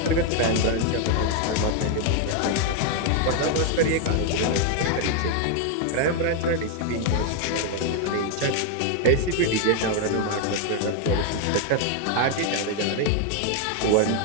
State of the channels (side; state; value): both; different; correlation 0.01